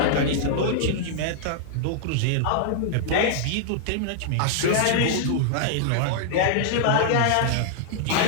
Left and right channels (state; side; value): different; both; correlation -0.01